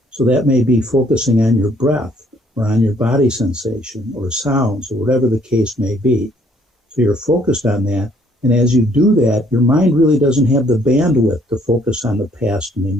So that may be focusing on your breath, or on your body sensation or sounds or whatever the case may be. So you're focused on that. And as you do that, your mind really doesn't have the bandwidth to focus on the past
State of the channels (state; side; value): normal; both; correlation 0.64